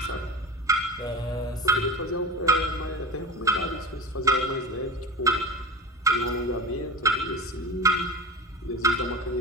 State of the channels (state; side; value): normal; both; correlation 0.31